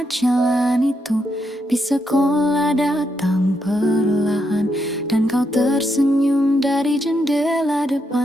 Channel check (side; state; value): both; normal; correlation 0.80